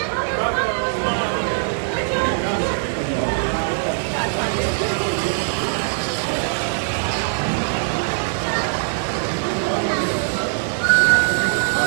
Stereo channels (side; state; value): left; silent; digital silence